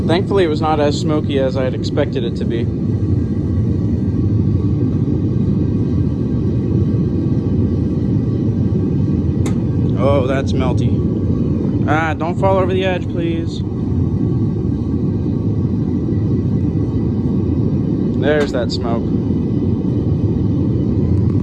Thankfully, it was not as smoky as I had expected it to be. Oh, that's melty. Ah, don't fall over the edge, please. There's that smoke.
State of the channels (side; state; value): right; noise; rumble, 25 dB below the sound